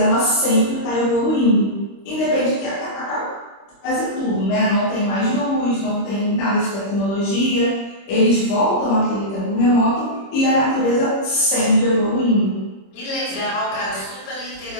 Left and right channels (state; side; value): late; right; 26 ms